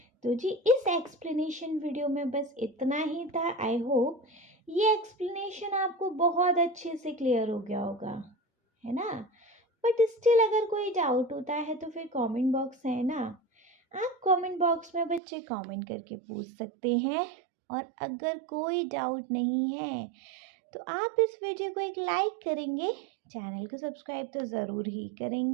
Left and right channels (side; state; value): left; drops out; at 15.2 s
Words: तो जी इस एक्सप्लेनेशन वीडियो में बस इतना ही था। आई होप ये एक्सप्लेनेशन आपको बहुत अच्छे से क्लियर हो गया होगा, है ना। बट स्टिल अगर कोई डाउट होता है तो फिर कमेंट बॉक्स है ना, आप कमेंट बॉक्स में बच्चे कमेंट करके पूछ सकते हैं। और अगर कोई डाउट नहीं है तो आप इस वीडियो को एक लाइक करेंगे, चैनल को सब्सक्राइब तो ज़रूर ही